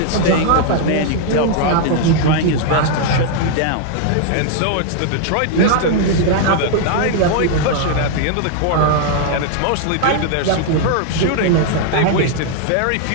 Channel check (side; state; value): both; different; correlation 0.00